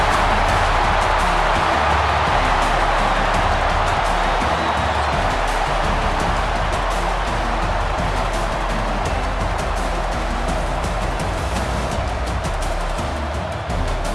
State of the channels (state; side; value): identical; both; correlation 1.00